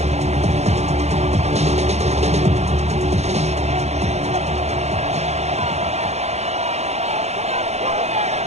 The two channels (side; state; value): left; late; 0.31 ms